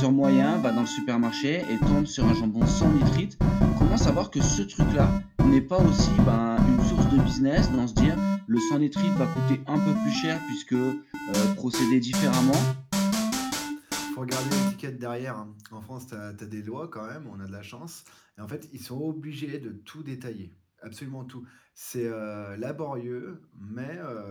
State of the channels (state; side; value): identical; both; correlation 1.00